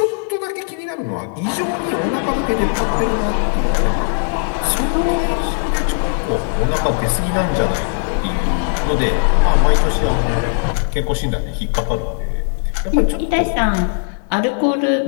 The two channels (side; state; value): right; silent; 65 dB below the other